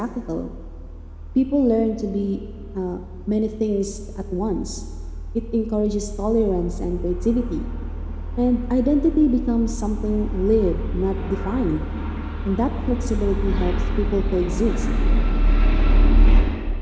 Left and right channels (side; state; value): both; identical; correlation 1.00